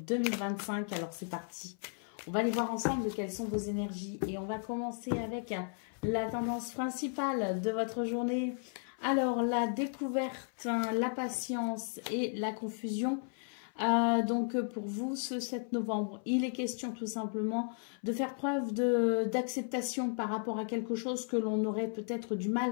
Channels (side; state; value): right; silent; 55 dB below the other